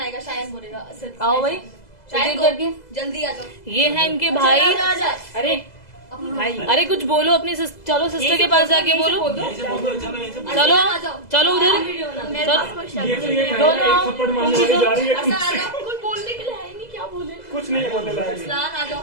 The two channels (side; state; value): right; late; 2.0 ms